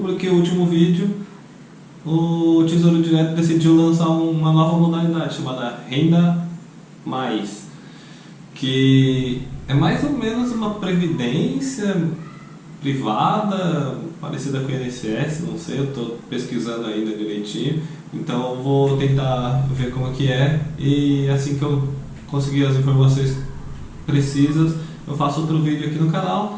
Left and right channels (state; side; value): identical; both; correlation 1.00